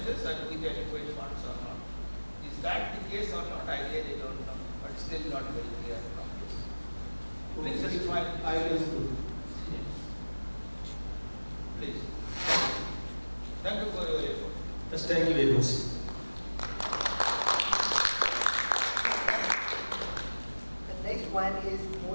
and with adequate funds or not? Is that the case or not? I really don't know, but still not very clear from this. Please define. I will do. Please. Thank you for your effort. Yes, thank you very much. The next one is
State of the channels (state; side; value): inverted; both; correlation -1.00